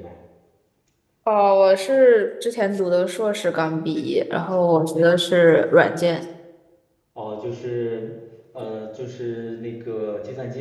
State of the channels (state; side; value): identical; both; correlation 1.00